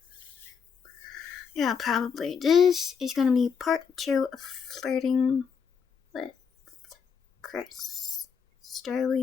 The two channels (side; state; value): right; quieter; 6.5 dB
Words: Yeah, probably. This is gonna be part 2 of Flirting with Chris